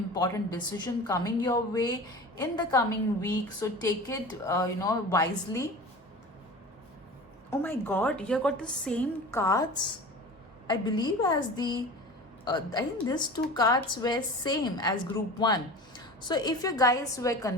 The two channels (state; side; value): normal; both; correlation 0.36